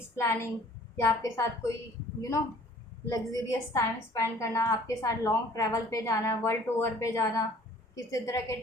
प्लानिंग, या आपके साथ कोई लग्जरियस टाइम स्पेंड करना, आपके साथ लॉन्ग ट्रैवल पे जाना, वर्ल्ड टूर पे जाना, किसी तरह के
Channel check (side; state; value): both; normal; correlation 0.53